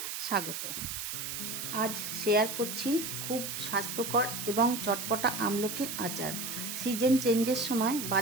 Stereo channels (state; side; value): noise; right; hiss, 5 dB below the sound